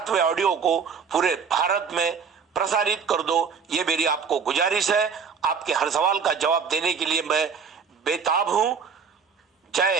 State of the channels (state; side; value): quieter; left; 6.1 dB